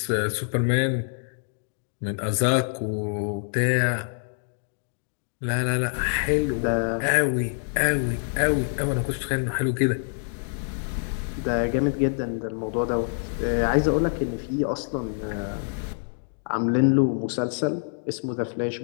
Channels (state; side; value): silent; right; digital silence